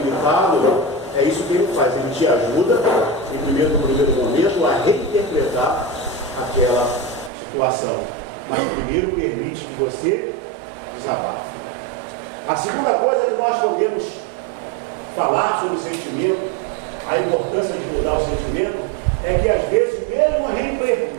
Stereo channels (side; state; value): left; drops out; at 7.3 s